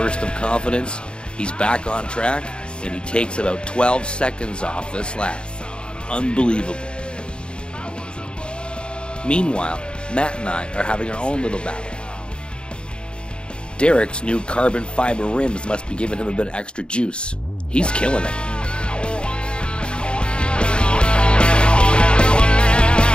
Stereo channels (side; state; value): right; late; 0.052 ms